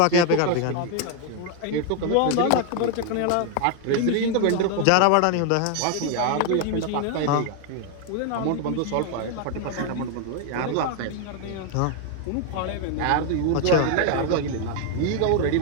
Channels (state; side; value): different; both; correlation 0.01